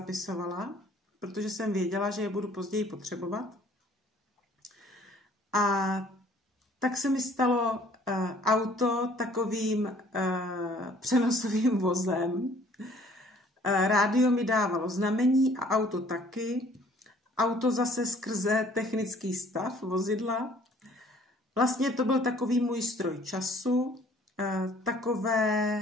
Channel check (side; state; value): both; normal; correlation 0.57